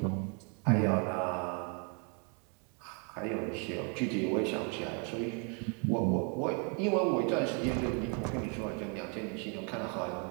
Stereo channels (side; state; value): left; quieter; 37.4 dB